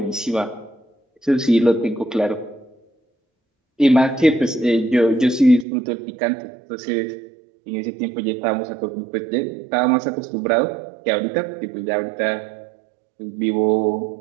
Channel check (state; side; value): drops out; left; at 5.7 s